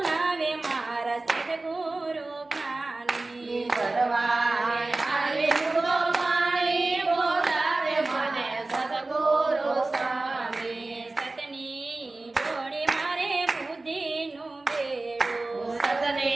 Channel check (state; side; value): quieter; left; 3.1 dB